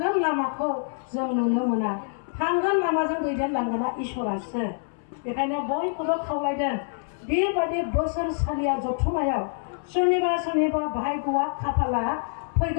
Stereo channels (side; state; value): right; silent; 61 dB below the other